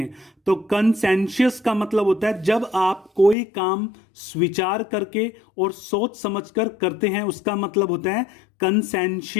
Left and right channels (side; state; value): right; drops out; at 3.4 s